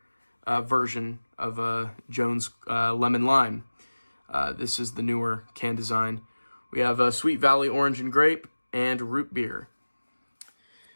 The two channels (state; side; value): inverted; both; correlation -1.00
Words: version of Jones Lemon Lime. This is the newer can design. We have Sweet Valley Orange and Grape and Root Beer,